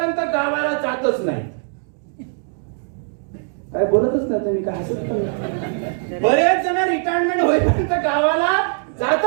गावाला जातच नाही. काय बोलतच नाही तुम्ही, काय हसत पण? बरेच जण रिटायरमेंट होईपर्यंत गावाला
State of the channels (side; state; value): left; silent; 60 dB below the other